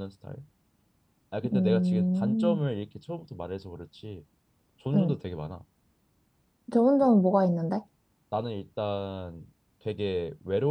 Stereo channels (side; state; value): both; identical; correlation 1.00